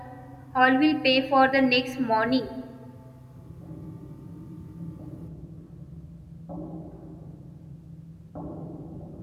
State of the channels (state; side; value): identical; both; correlation 1.00